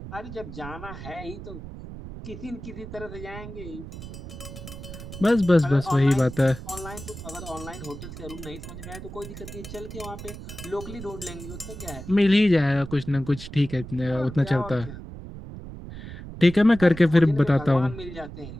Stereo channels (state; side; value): noise; right; rumble, 12 dB below the sound